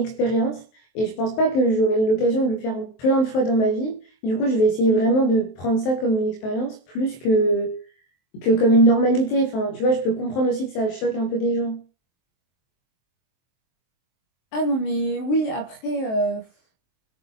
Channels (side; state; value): right; late; 23 ms